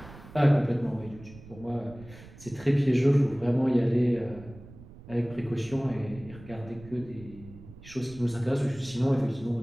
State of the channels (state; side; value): noise; right; rumble, 18 dB below the sound